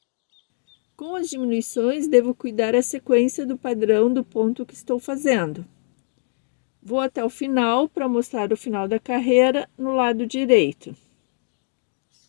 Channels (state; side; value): silent; right; digital silence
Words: Com as diminuições, devo cuidar a sequência do padrão do ponto que estou fazendo. Vou até o final para mostrar o final da carreira no lado direito.